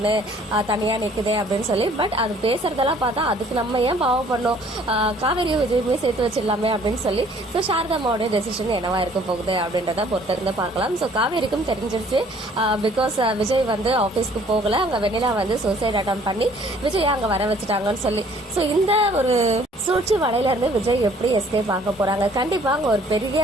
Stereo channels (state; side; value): normal; both; correlation 0.57